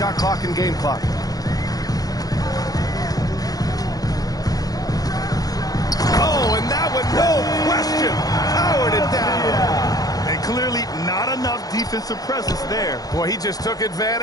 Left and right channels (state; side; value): late; right; 0.18 ms